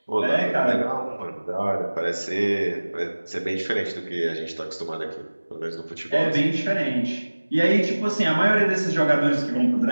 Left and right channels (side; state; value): both; inverted; correlation -1.00